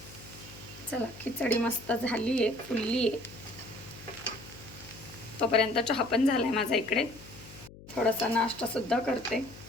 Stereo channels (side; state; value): left; noise; hum, 18 dB below the sound